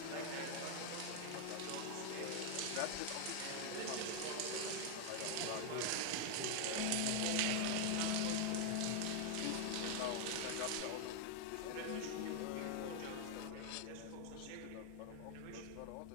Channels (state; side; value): different; both; correlation 0.00